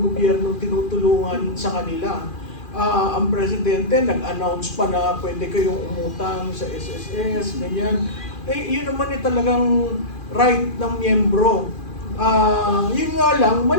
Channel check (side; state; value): right; late; 2.4 ms